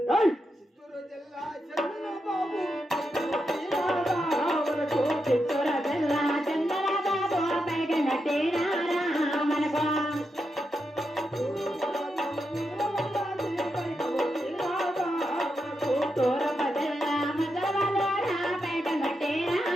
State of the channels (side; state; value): both; normal; correlation 0.85